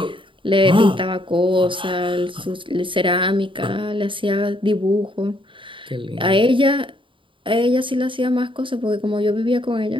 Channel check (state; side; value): late; left; 0.25 ms